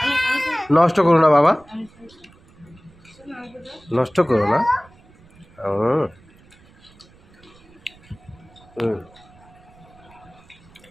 নষ্ট করো না বাবা আমি নষ্ট করো না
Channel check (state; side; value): noise; right; rumble, 27 dB below the sound